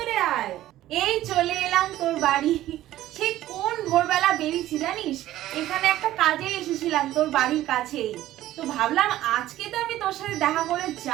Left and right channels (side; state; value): left; quieter; 14.3 dB